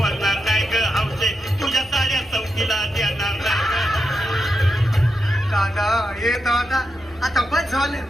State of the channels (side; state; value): right; noise; hum, 25 dB below the sound